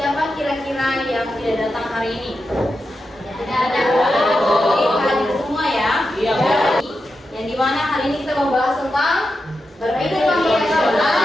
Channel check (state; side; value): normal; both; correlation 0.89